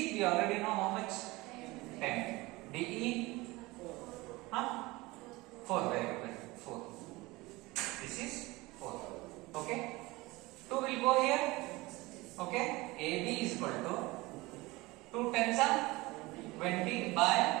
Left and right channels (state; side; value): quieter; left; 21.6 dB